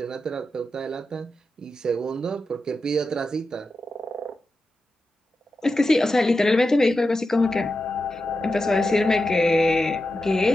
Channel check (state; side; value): normal; both; correlation 0.90